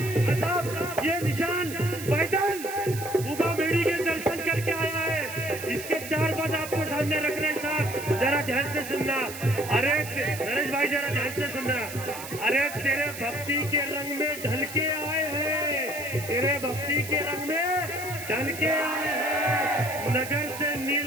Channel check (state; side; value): noise; right; hiss, 11 dB below the sound